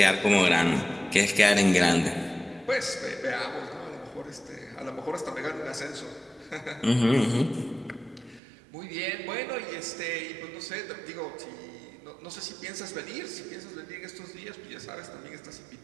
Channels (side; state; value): left; drops out; at 8.4 s